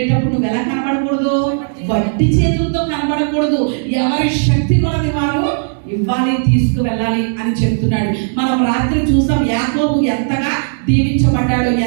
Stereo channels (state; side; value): silent; left; 67 dB below the other